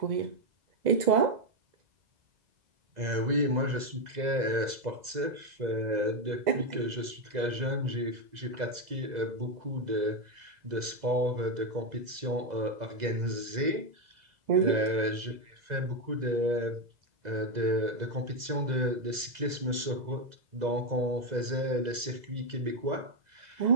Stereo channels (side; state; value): left; late; 2.0 ms